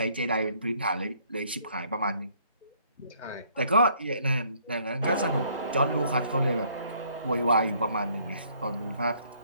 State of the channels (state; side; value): inverted; both; correlation -0.64